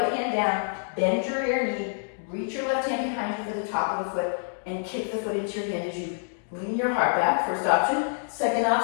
hand down, bend your rear knee, reach your left hand behind you for the top of the foot, and kick the foot into your hand as you lean your heart back. First option. Second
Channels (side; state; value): right; silent; digital silence